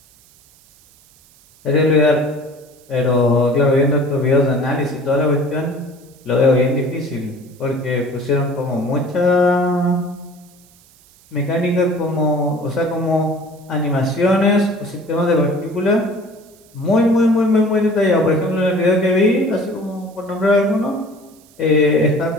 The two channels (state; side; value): noise; right; hiss, 29 dB below the sound